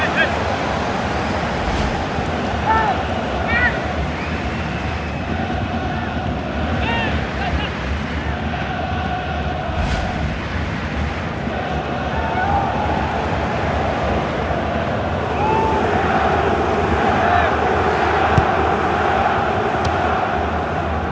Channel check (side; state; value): both; identical; correlation 1.00